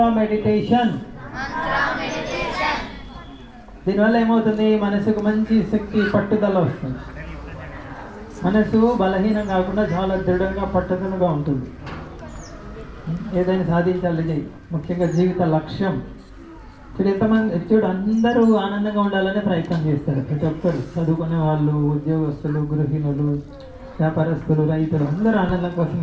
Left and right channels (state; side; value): identical; both; correlation 1.00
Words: మెడిటేషన్. దీనివల్ల ఏమవుతుంది? మనసుకు మంచి శక్తి, పట్టుదల వస్తుంది. మనసు బలహీనం కాకుండా చాలా దృఢంగా, పట్టుదలగా ఉంటుంది. ఏదైనా సాధించాలి, ముఖ్యంగా జీవిత లక్ష్యం. చూడు అందరూ ఆనందంగా ఉండాలనే ప్రయత్నం చేస్తారు. ప్రతి ఒక్కరు, చదువుకునే వాళ్ళు, ఉద్యోగస్తులు, గృహిణులు, వ్యాపారస్తులు, రైతులు, అందరూ ఆనందం